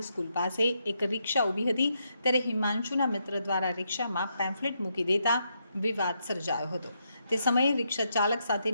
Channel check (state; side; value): inverted; both; correlation -0.80